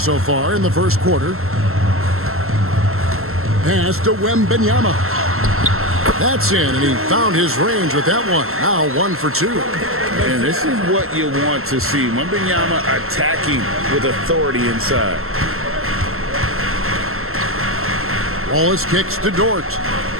far in the first quarter. Pass to Wembanyama. That's in, and he found his range with that one. Now 1 for 2. And this is what you want to see. Wembanyama attacking with authority inside. Wallace kicks to Dort.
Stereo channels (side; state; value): left; late; 0.62 ms